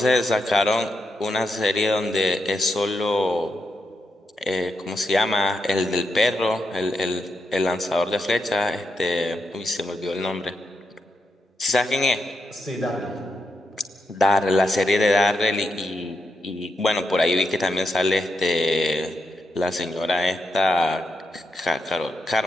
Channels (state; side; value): normal; both; correlation 0.83